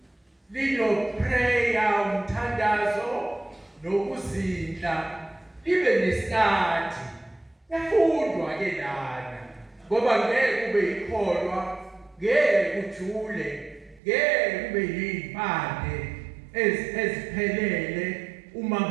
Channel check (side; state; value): left; drops out; at 14.0 s